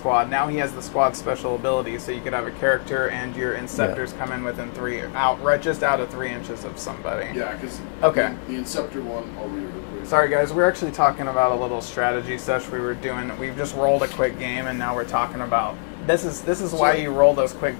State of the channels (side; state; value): right; silent; digital silence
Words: Now he has the squad special ability, so you could have a character and your Inceptors come in within just out of 3 inches of somebody. Yeah, because Okay. the Inceptor one, I'll read it real quick. Sorry guys, we're actually talking about a little strategy sesh we've just rolled a quick game and now we're talking about this is why you roll those quick